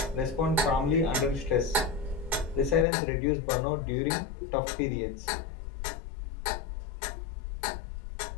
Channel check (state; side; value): drops out; right; at 2.9 s